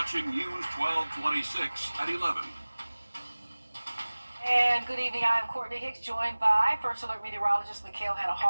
News 1226 at 11. And good evening, I'm Courtney Hicks, joined by First Alert meteorologist Mikhail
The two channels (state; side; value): inverted; both; correlation -1.00